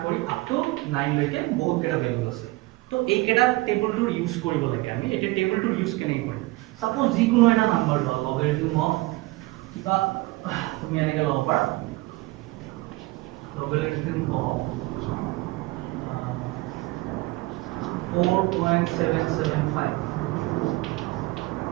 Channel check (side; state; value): left; quieter; 21.2 dB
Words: কৰি আপ টু 9 লৈকে বহুত কেইটা ভ্যালু আছে তো এই কেইটা টেবুলটো ইউজ কৰিব লাগে আমি এটা টেবুলটো ইউজ কেনে কৰিম সাপোজ যিকোনো এটা নাম্বাৰ লও লগাৰিথম অফ কিবা তুমি এনেকৈ লব পাৰা logarithm of 4.775